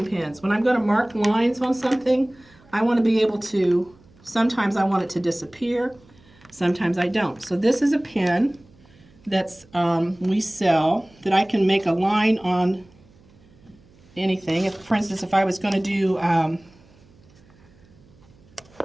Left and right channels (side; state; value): right; noise; hum, 28 dB below the sound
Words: pins. When I'm going to mark lines on something, I want to be able to, sometimes I want it to disappear, sometimes I don't. So this is a pin that's we sell that I can make a line on anything. If, for instance, if I was going to do,